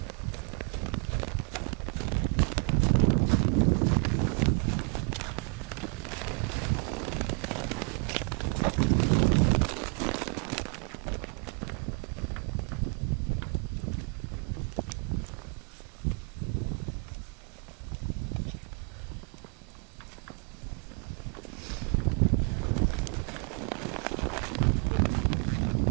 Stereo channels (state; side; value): quieter; left; 34.7 dB